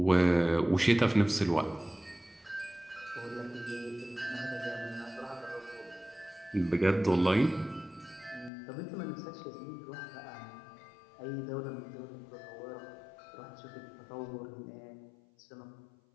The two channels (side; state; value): right; drops out; at 8.5 s